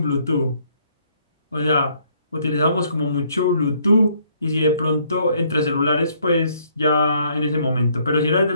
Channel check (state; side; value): inverted; both; correlation -0.66